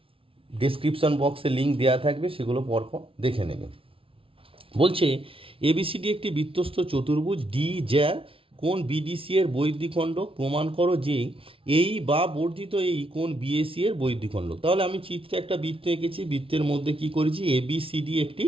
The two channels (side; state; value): left; late; 0.26 ms